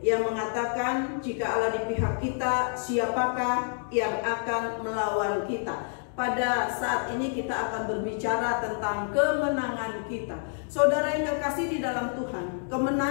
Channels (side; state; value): right; silent; digital silence